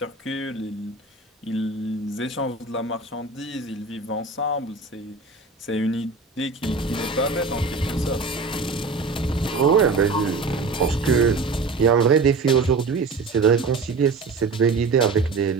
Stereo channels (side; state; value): left; quieter; 4.0 dB